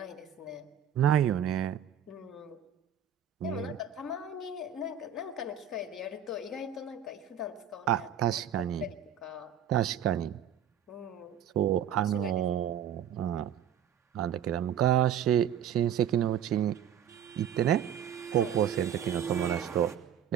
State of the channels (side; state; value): left; quieter; 8.7 dB